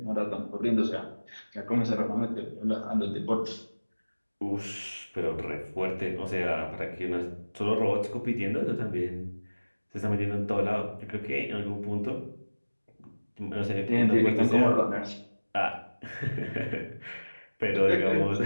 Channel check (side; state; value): both; inverted; correlation -1.00